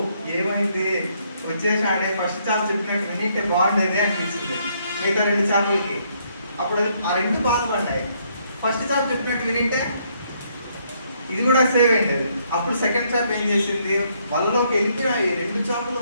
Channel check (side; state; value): both; inverted; correlation -0.71